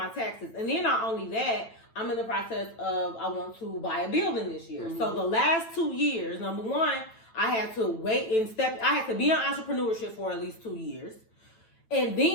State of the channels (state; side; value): late; right; 9.0 ms